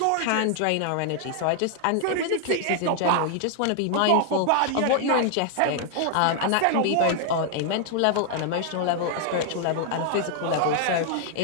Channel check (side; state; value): both; different; correlation 0.00